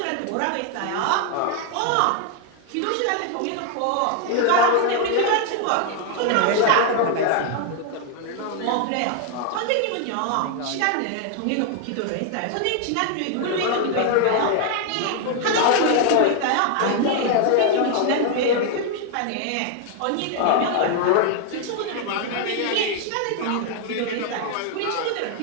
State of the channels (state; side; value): different; both; correlation 0.00